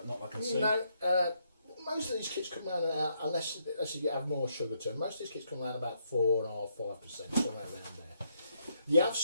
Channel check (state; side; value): inverted; both; correlation -0.75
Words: Not like I can see. No, most of these kits come around unless you have more sugar to them, most of these kits come around about 4.5%, 5%, somewhere around there. You have